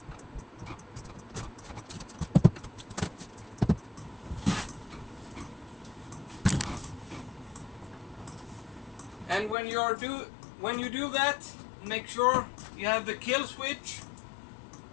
And when you do that, make sure you have the kill switch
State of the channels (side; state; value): right; drops out; at 9.6 s